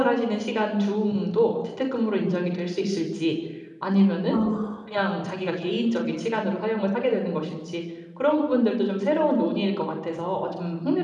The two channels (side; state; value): both; identical; correlation 1.00